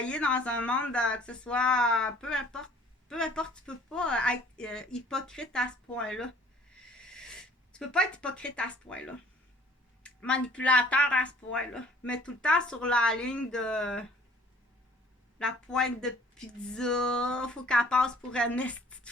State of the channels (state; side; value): normal; both; correlation 0.55